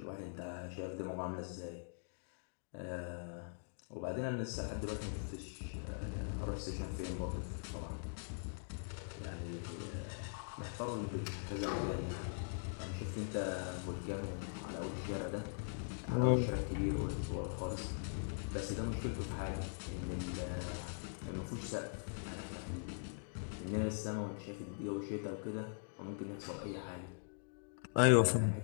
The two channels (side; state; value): right; silent; digital silence